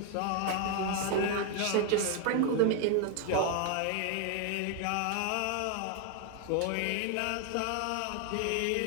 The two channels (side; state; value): both; different; correlation 0.01